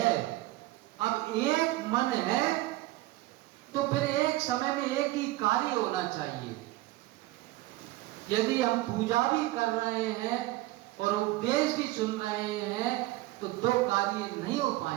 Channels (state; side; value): quieter; left; 17.9 dB